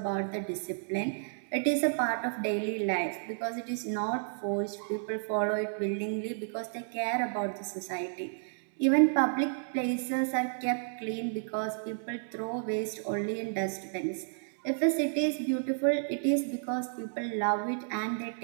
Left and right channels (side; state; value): left; silent; digital silence